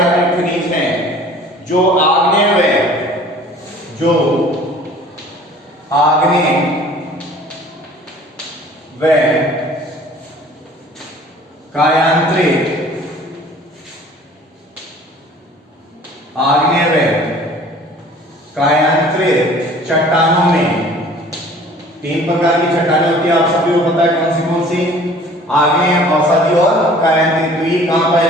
खनिज है जो आग्नेय व कायांतरित चट्टानों में, 3 प्रकार की चट्टानें होती है, आप सभी को पता है कौन सी? आग्नेय, अवसादी और कायांतरित। तो ये कहां पाया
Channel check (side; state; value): both; normal; correlation 0.49